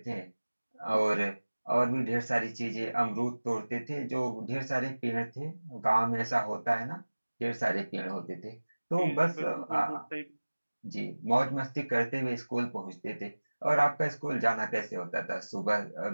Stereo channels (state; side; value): inverted; both; correlation -1.00